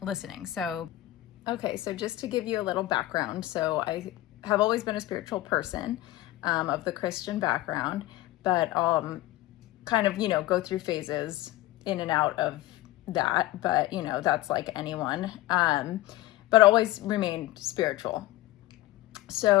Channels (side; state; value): right; quieter; 16.6 dB